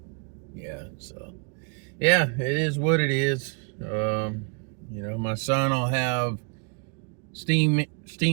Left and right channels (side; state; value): left; quieter; 37.0 dB